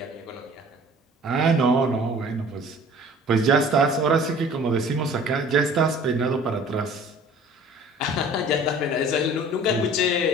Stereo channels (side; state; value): both; normal; correlation 0.48